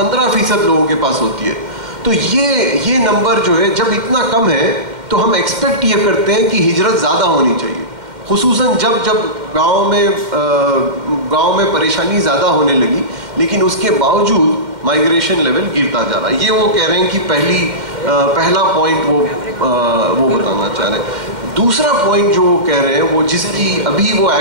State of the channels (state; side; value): late; left; 2.1 ms